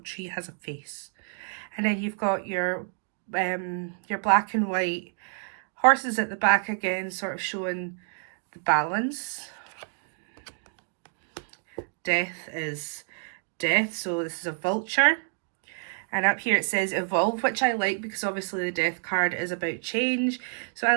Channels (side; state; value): left; silent; 59 dB below the other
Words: tree has a face. And then you've got your black and white horses at the back again, sort of showing the balance. Death is death, so this is a vulture. And up here it says evolve, which I like because obviously the death card is about change. So I